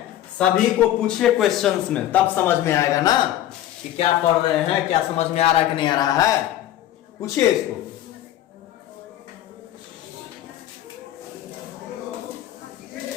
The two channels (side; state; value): right; quieter; 12.8 dB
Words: सभी को पूछिए क्वेश्चंस में, तब समझ में आएगा ना कि क्या पढ़ रहे हैं, क्या समझ में आ रहा है कि नहीं आ रहा है। पूछिए इसको।